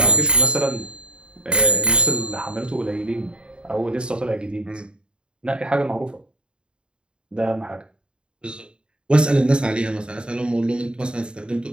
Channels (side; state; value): left; late; 0.051 ms